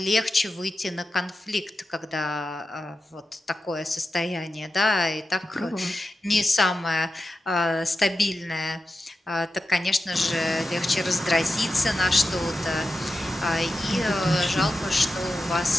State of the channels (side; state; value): both; normal; correlation 0.91